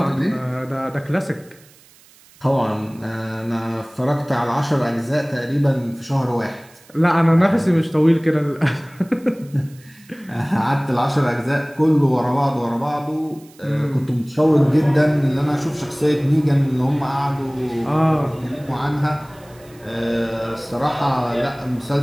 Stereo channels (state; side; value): noise; right; hiss, 27 dB below the sound